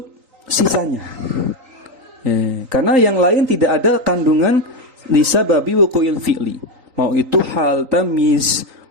sisanya. Karena yang lain tidak ada kandungan li sababi wuqu'il fi'li. Mau itu hal, tamyiz,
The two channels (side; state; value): left; late; 3.8 ms